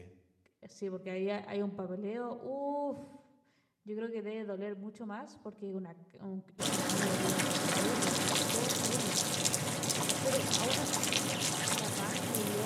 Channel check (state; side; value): identical; both; correlation 1.00